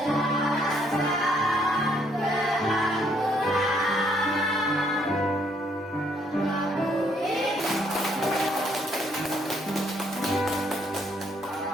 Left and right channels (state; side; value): normal; both; correlation 0.69